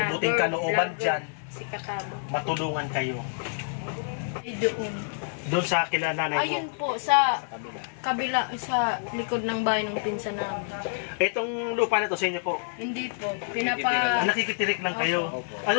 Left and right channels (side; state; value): right; silent; 60 dB below the other